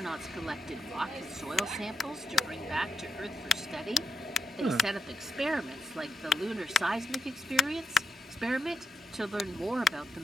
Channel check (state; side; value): normal; both; correlation 0.85